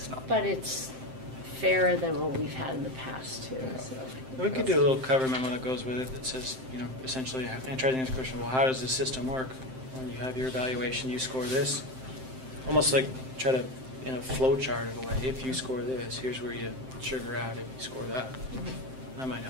not. But it's fairer than what we've had in the past, too. So. We could do a little cover memo that goes with it that says, essentially, and try to answer the question, well, how does the system work? When you have your evaluation, you score this. Almost like try to, in a flow chart of a way, if you score this, here's where you sugar out if you score that. That might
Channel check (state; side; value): late; left; 7.7 ms